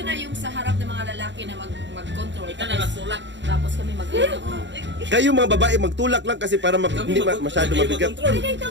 na yung sa harap ng mga lalaki na mag-control. Ikaw na nagtulak. Tapos kami mag-ilog. Kayo mga babae, magtulak lang kasi para hindi masyado mabigat. Pwede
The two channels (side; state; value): left; late; 0.53 ms